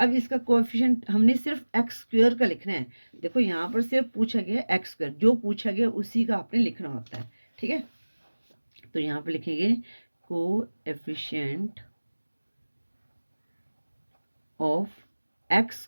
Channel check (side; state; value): both; inverted; correlation -1.00